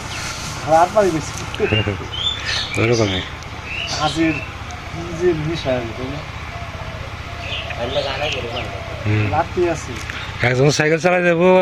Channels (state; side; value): identical; both; correlation 1.00